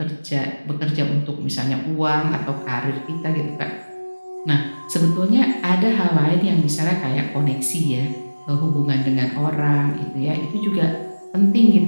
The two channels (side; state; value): both; inverted; correlation -1.00